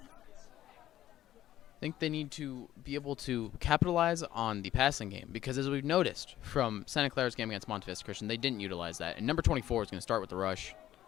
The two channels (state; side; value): quieter; right; 13.0 dB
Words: I think they need to be able to capitalize on the passing game because, as we've noticed from Santa Clara's game against Monte Vista Christian, they didn't utilize that. And number 24 is going to start with the rush.